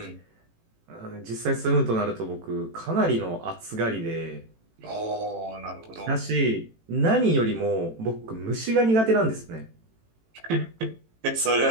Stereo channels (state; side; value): late; left; 18 ms